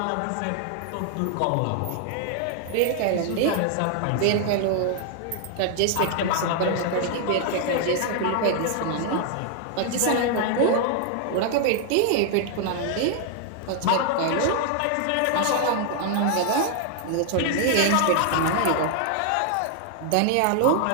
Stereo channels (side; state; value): both; different; correlation 0.00